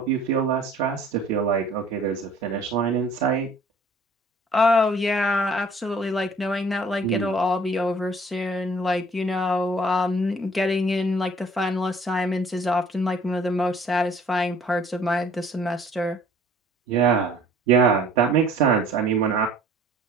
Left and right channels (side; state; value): both; normal; correlation 0.54